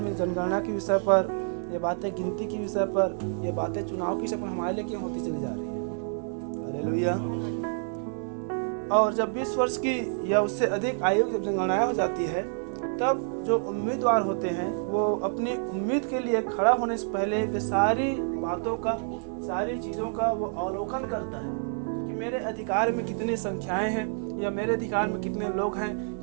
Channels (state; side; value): silent; left; 59 dB below the other